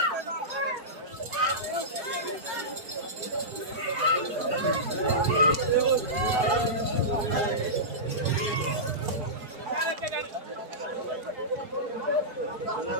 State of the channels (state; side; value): late; left; 4.4 ms